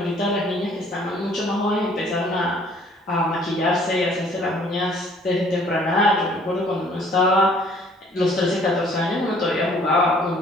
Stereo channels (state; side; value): normal; both; correlation 0.58